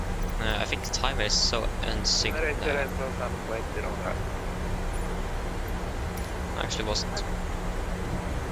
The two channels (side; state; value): both; identical; correlation 1.00